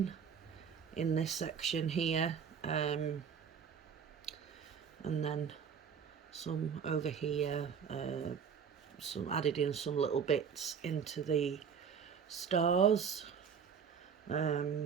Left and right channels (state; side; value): quieter; left; 6.9 dB